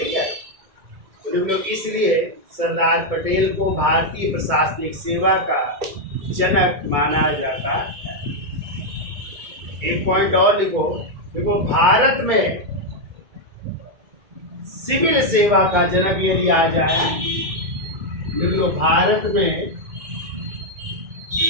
है, तो इसलिए सरदार पटेल को भारतीय प्रशासनिक सेवा का जनक माना जाता है। एक पॉइंट और लिखो, देखो भारत में सिविल सेवा का जनक यदि आ जाए, देखो भारत में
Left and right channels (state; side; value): late; left; 2.2 ms